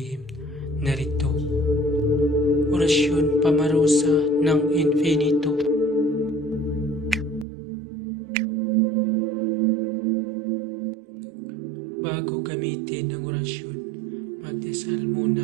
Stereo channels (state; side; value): drops out; left; at 7.5 s